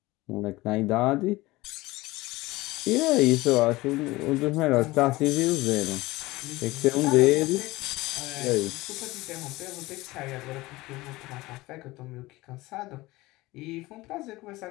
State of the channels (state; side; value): quieter; right; 19.9 dB